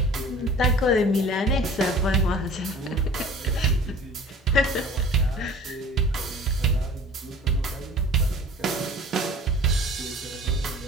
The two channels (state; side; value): normal; both; correlation 0.45